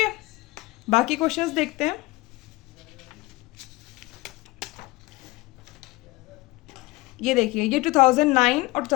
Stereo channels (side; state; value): right; quieter; 21.3 dB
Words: बाकी क्वेश्चंस देखते हैं। ये देखिए, ये 2009 और